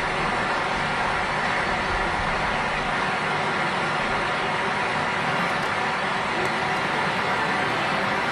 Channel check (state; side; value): identical; both; correlation 1.00